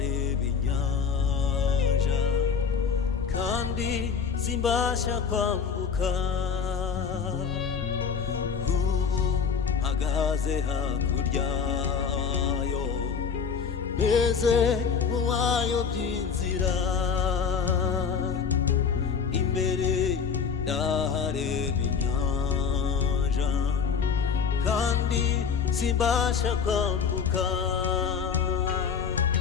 inyanja kandi simbasha kwambuka. Ubu mpagaze hakurya yo, meze nk'uwayobye inzira, imbere ndahareba inyanja kandi simbasha kwambuka.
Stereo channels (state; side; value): quieter; right; 6.3 dB